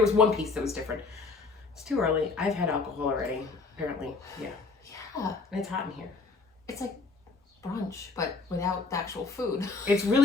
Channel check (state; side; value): quieter; right; 4.1 dB